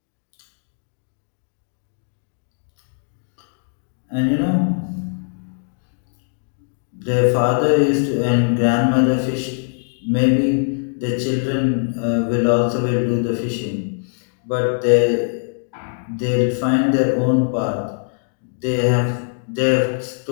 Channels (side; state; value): right; silent; digital silence